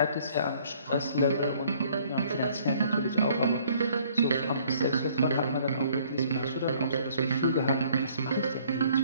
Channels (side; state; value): both; inverted; correlation -0.60